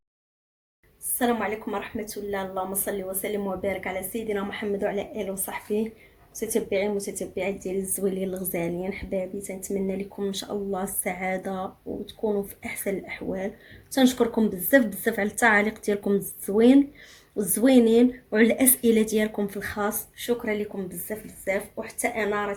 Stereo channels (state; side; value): identical; both; correlation 1.00